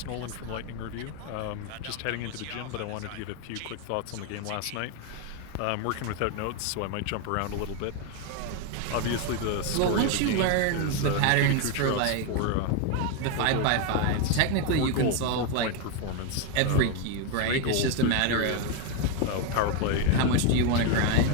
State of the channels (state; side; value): different; both; correlation 0.02